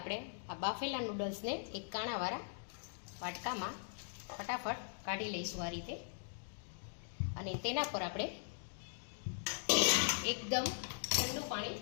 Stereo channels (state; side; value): silent; right; digital silence